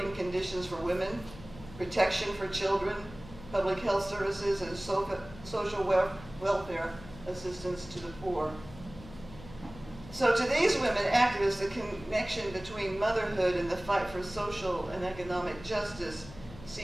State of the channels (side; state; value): left; noise; hum, 16 dB below the sound